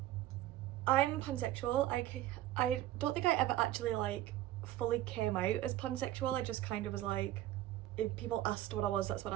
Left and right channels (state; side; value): quieter; left; 14.3 dB